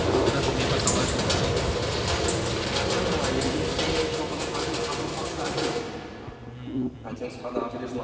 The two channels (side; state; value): both; identical; correlation 1.00